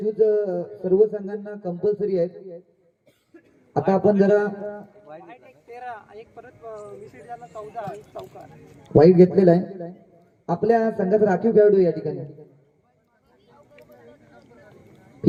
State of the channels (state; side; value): identical; both; correlation 1.00